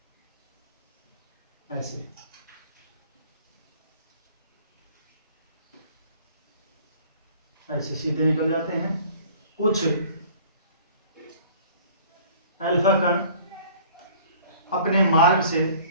ऐसे सीधे निकल जाते हैं। कुछ अल्फा कण अपने मार्ग से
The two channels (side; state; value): both; inverted; correlation -0.51